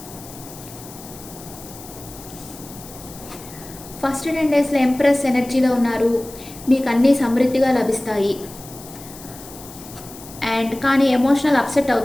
First 10 daysలో ఎంప్రెస్ ఎనర్జీలో ఉన్నారు. మీకు అన్నీ సమృద్ధిగా లభిస్తాయి. అండ్ కానీ ఎమోషనల్ అప్సెట్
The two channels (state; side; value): noise; left; hiss, 17 dB below the sound